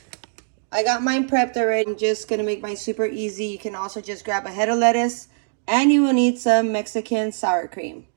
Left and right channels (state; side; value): silent; left; digital silence